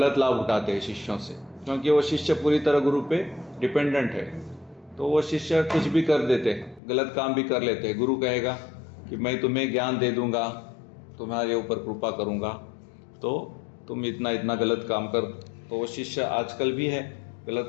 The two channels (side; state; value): right; drops out; at 6.8 s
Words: लाभ उठाते हैं शिष्यों से, क्योंकि वो शिष्य पूरी तरह गुरु पे डिपेंडेंट है। तो वो शिष्य कुछ भी कर देते हैं, गलत काम भी कर लेते हैं। गुरु कहेगा कि मैं तुम्हें ज्ञान दे दूंगा, तुम्हारे ऊपर कृपा करूंगा, तो तुम इतना इतना गलत काम कर, तो वो शिष्य आजकल भी है,